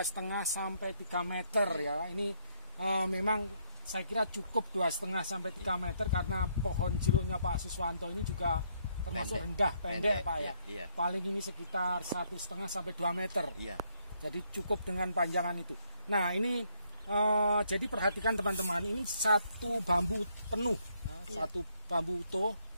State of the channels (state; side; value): inverted; both; correlation -0.71